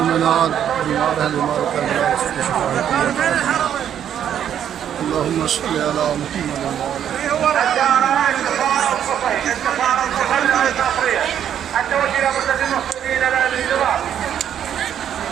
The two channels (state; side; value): quieter; left; 9.6 dB